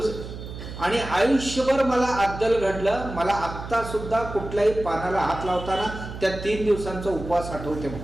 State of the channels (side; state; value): right; noise; hum, 10 dB below the sound